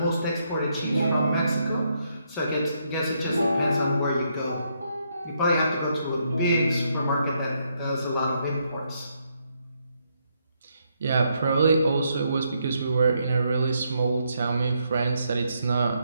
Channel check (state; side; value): inverted; both; correlation -0.76